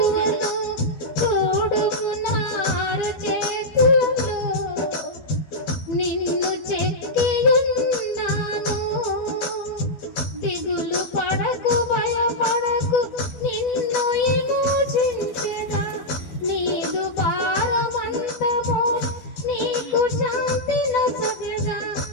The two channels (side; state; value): right; late; 12 ms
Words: చూడుము నా అరచేతులలో నిన్ను చెక్కి ఉన్నాను. దిగులు పడకు భయపడకు, నిన్ను విమోచించెదా. నీదు భారమంతము నీకు శాంతి నొసగెదా